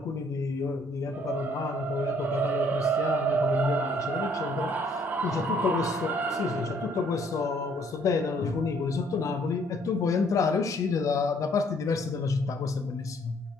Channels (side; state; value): both; normal; correlation 0.63